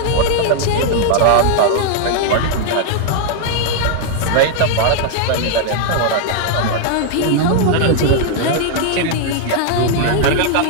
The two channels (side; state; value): both; different; correlation 0.00